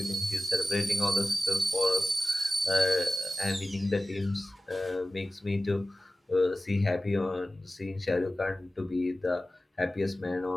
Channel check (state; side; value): normal; both; correlation 0.96